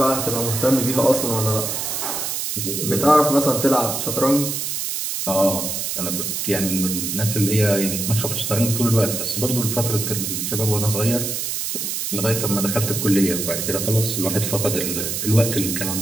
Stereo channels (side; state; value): right; noise; hiss, 2 dB below the sound